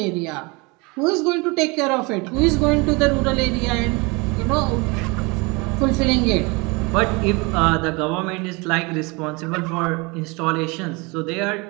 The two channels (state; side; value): quieter; left; 27.3 dB